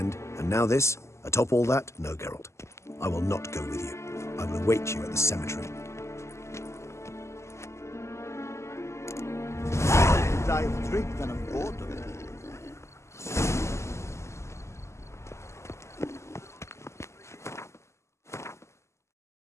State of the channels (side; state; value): right; late; 0.13 ms